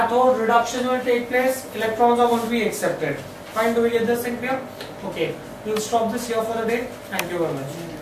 reduction will take place, electrons are going to be accepted. Fine, do we get this thing clear? Okay, we'll stop this here for the day. Thank you very much.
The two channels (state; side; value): identical; both; correlation 1.00